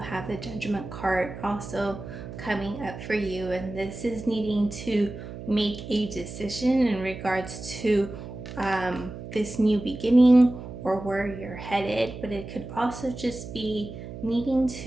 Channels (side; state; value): right; noise; hum, 11 dB below the sound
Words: the Judgment card also coming up for you, and this is needing to make a decision in regards to this new beginning or where you're headed, but it could also just be needing